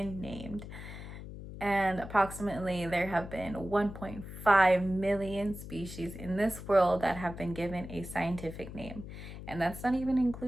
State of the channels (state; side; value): noise; left; hum, 11 dB below the sound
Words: named. And approximately there have been 1.5 million species in this world that have been given a scientific name. And that's not even